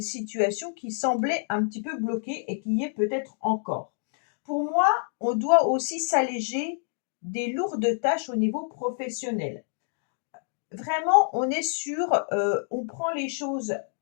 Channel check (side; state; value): right; silent; digital silence